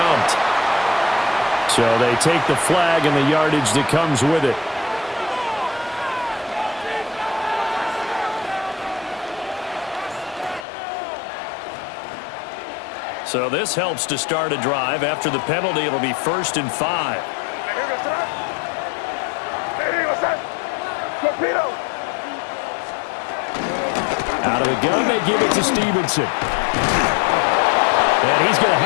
So they take the flag and the yardage that comes with it. So this helps to start a drive. After the penalty, it'll be 1st and 5. Out of the gun, they give it to Stevenson. And he's going to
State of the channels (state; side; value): drops out; right; at 10.7 s